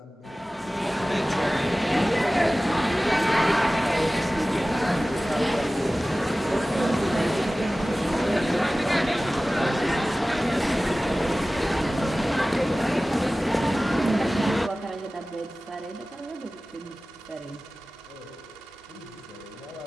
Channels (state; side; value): normal; both; correlation 0.97